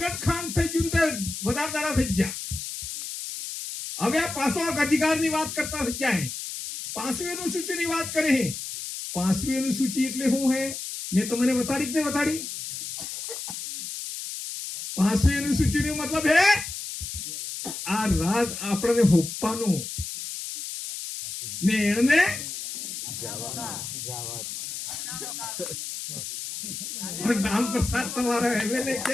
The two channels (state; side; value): noise; left; hiss, 7 dB below the sound